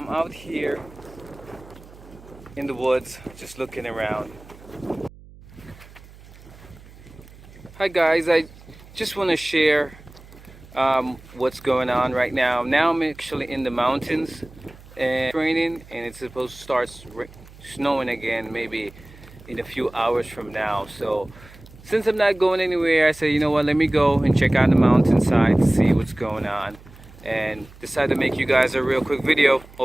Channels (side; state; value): right; noise; hum, 21 dB below the sound